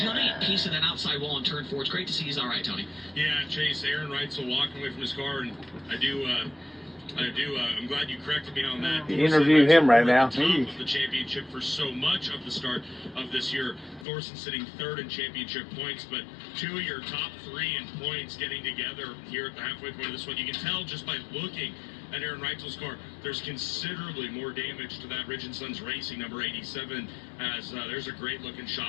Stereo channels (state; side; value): drops out; right; at 14.1 s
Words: piece of that outside wall in turn 4. It's great to see he's all right, Tony. Yeah, Chase, Aaron Reitzel walking away from his car, and I do I'm glad you corrected me on that. You interview him right now. Top of the championship for so much of the start of this year. Thorson sitting third in championship points, but two of your top three in points getting together here at the halfway point of this one. You can tell just by looking at Aaron Reitzel's car, there's considerably more damage to that Ridge & Sons Racing number 87, as there's a great looking